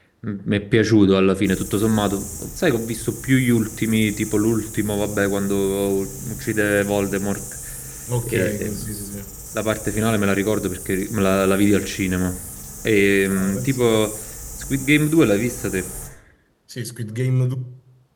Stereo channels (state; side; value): identical; both; correlation 1.00